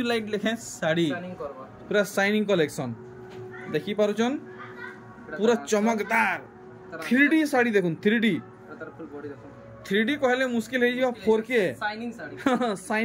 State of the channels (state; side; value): identical; both; correlation 1.00